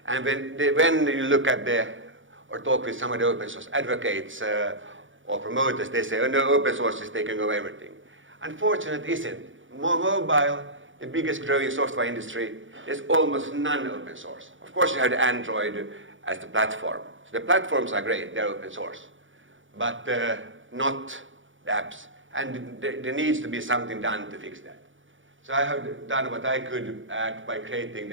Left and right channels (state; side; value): late; left; 0.56 ms